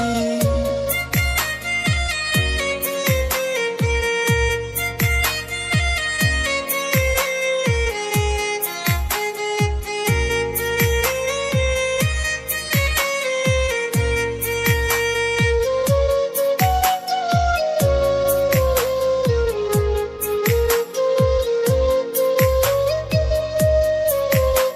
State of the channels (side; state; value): both; identical; correlation 1.00